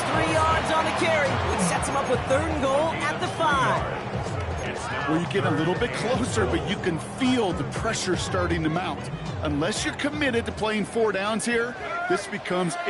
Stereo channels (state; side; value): identical; both; correlation 1.00